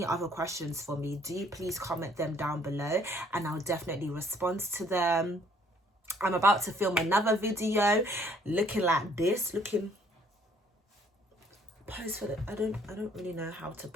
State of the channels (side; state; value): both; normal; correlation 0.61